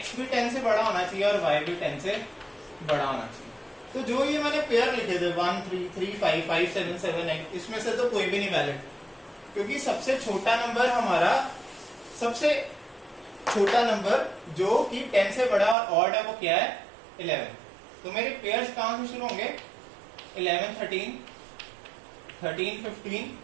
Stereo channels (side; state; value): left; drops out; at 15.8 s